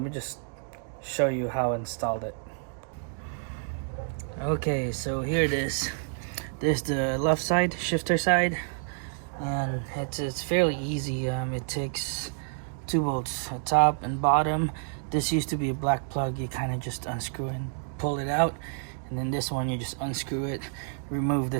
me just show you how I installed it. Okay, so here it is. There's the left side, shifter side. And it's fairly easy. It takes 2 bolts, a top and bottom. This used to be a black plug. You kind of just unscrew and pull it out, and then this one you just unscrew it, remove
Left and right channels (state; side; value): silent; left; digital silence